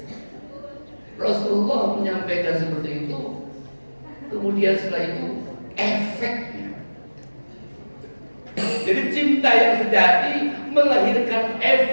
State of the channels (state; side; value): inverted; both; correlation -1.00